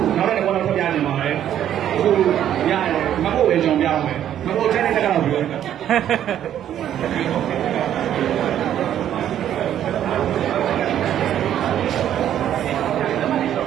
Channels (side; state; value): left; quieter; 10.7 dB